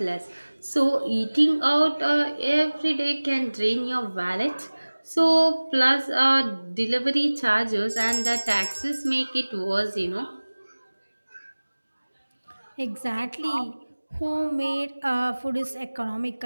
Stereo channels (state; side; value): inverted; both; correlation -1.00